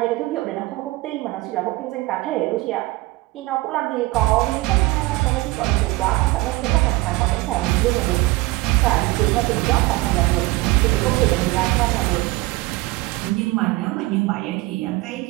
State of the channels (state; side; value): quieter; left; 20.6 dB